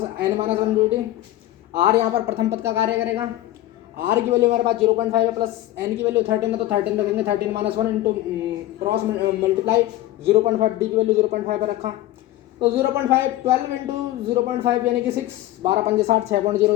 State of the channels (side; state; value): right; quieter; 15.1 dB